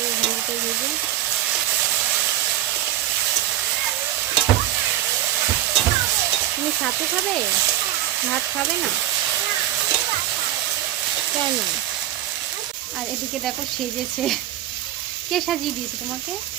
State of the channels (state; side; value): quieter; left; 13.5 dB